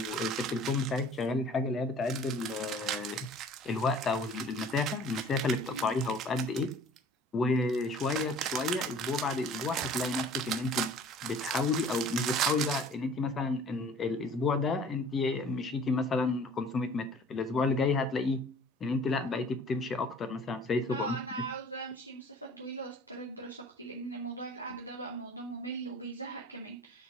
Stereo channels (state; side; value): normal; both; correlation 0.49